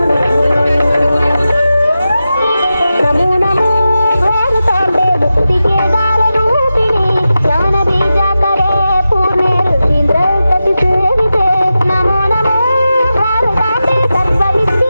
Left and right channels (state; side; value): inverted; both; correlation -0.92